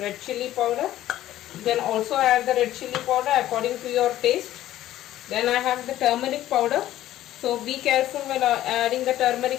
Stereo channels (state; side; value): quieter; right; 13.7 dB